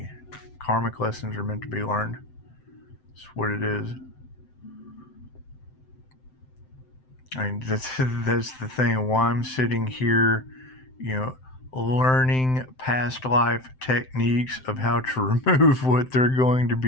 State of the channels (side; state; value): right; late; 7.7 ms